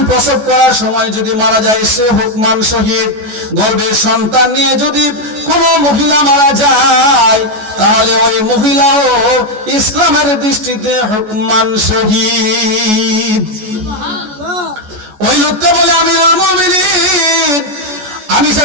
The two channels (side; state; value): left; late; 14 ms